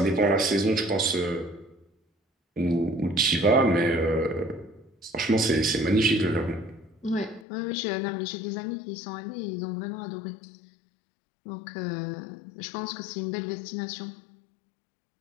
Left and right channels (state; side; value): drops out; right; at 7.5 s